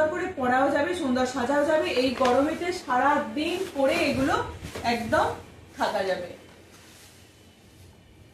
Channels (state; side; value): identical; both; correlation 1.00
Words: করে পরাও যাবে, সুন্দর সাজাও যাবে। এই গরমেতে সারা দিন পরে এগুলো একদম থাকা যাবে।